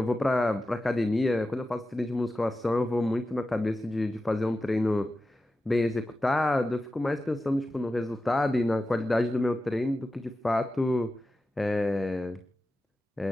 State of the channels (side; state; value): both; normal; correlation 0.93